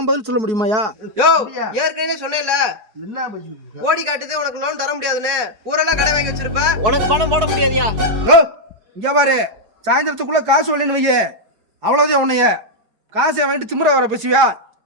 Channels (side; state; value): left; late; 4.8 ms